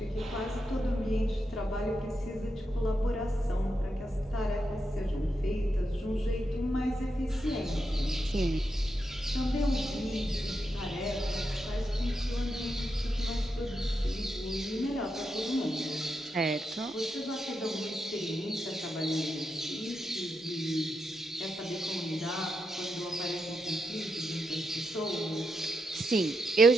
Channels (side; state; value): both; normal; correlation 0.84